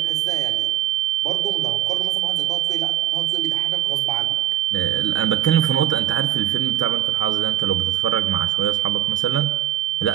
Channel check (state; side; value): quieter; left; 12.8 dB